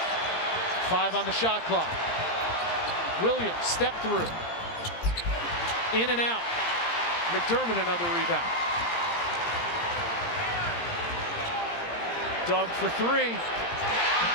5 on the shot clock. Williams, step through. In and out. McDermott, another rebound. Doug for three.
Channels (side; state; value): right; late; 17 ms